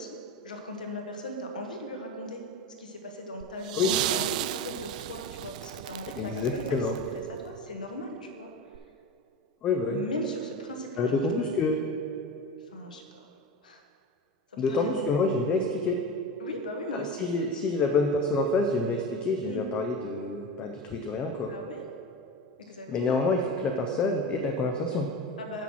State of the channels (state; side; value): normal; both; correlation 0.26